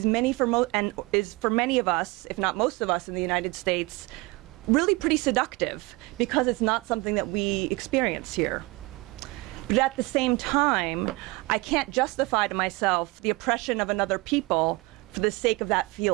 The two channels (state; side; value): quieter; left; 24.0 dB